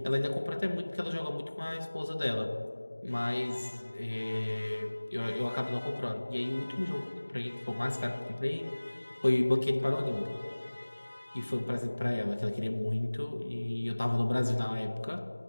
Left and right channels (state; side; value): inverted; both; correlation -1.00